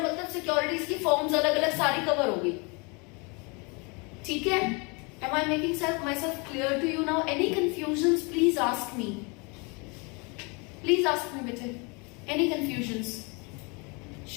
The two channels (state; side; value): quieter; right; 30.6 dB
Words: मतलब सिक्योरिटीज की फॉर्म्स अलग अलग सारी कवर होगी. ठीक है? Am I making myself clear to you now? Any confusions? Please ask me. Please ask me, bete. Any confusions?